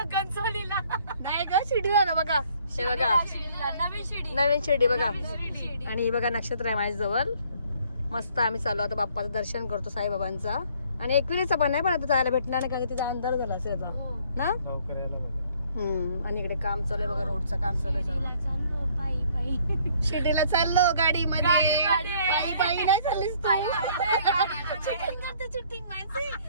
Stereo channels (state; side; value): inverted; both; correlation -0.61